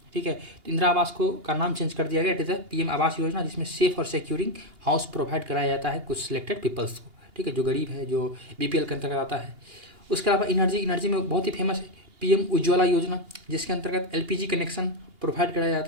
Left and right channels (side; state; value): left; late; 2.8 ms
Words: ठीक है। तो इंदिरा आवास को का नाम चेंज कर दिया गया, it is PM Awas Yojana, जिसमें सेफ और सिक्योरिंग हाउस प्रोवाइड कराया जाता है कुछ सिलेक्टेड पीपल्स को, ठीक है, जो गरीब है, जो बीपीएल के अंतर्गत आता है। उसके अलावा एनर्जी में बहुत ही फेमस है पीएम उज्ज्वला योजना, जिसके अंतर्गत एलपीजी कनेक्शन प्रोवाइड कराया